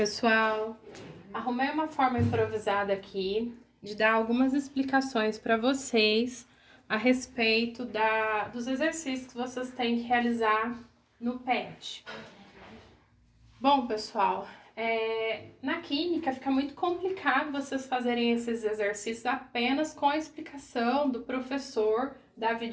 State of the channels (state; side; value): identical; both; correlation 1.00